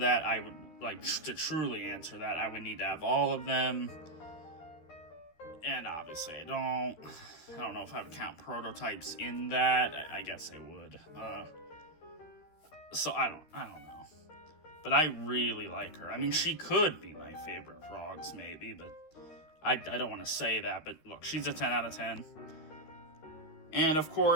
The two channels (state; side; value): late; right; 13 ms